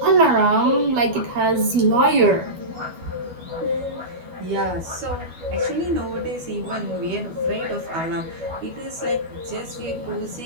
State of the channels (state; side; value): late; left; 12 ms